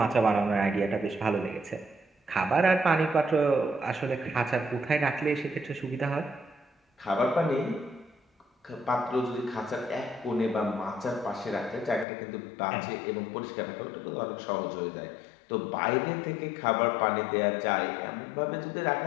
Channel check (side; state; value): right; drops out; at 12.1 s